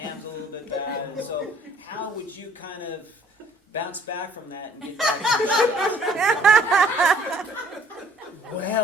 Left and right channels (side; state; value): both; normal; correlation 0.58